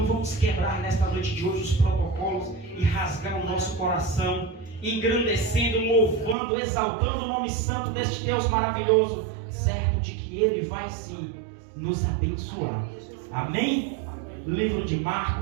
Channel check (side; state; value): left; drops out; at 6.4 s